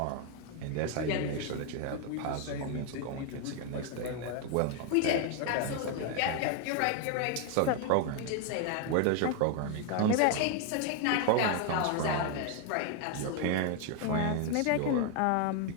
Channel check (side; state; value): both; different; correlation 0.01